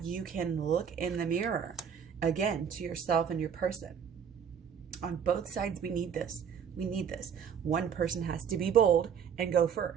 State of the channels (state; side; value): quieter; left; 7.5 dB